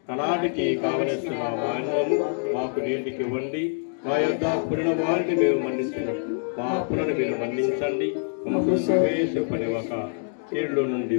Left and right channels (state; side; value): silent; right; 61 dB below the other